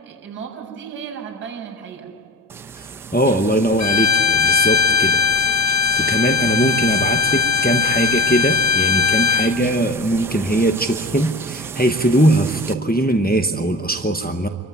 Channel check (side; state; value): both; normal; correlation 0.33